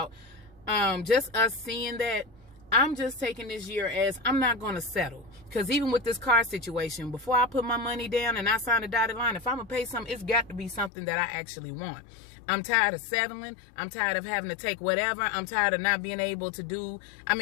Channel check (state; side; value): drops out; right; at 10.9 s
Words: just us seeing that, I'm just taking this year as I'm not going to settle. Because even with this car situation, before I put my money down and I sign a dotted line, if I'm going to pay something, it's got to be something that I actually want. I'm tired of settling. I'm tired of having to take whatever. I'm tired of not being able to do. I'm